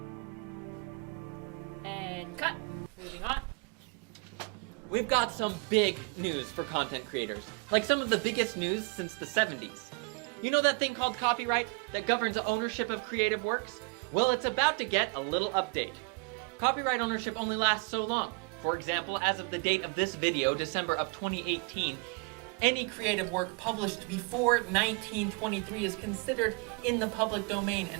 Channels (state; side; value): quieter; left; 31.9 dB